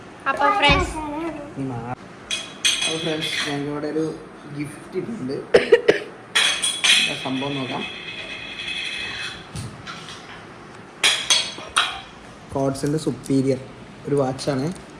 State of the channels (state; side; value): identical; both; correlation 1.00